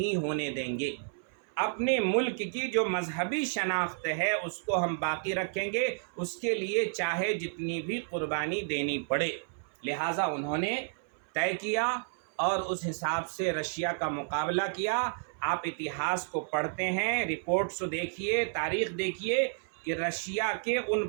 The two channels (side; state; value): left; silent; 57 dB below the other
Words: ہونے دیں گے. اپنے ملک کی جو مذہبی شناخت ہے اس کو ہم باقی رکھیں گے، اس کے لیے چاہے جتنی بھی قربانی دینی پڑے. لہٰذا انہوں نے طے کیا اور اس حساب سے رشیا کا مقابلہ کیا. آپ اتہاس کو پڑھتے ہیں، رپورٹس دیکھیے، تاریخ دیکھیے کہ رشیا کے ان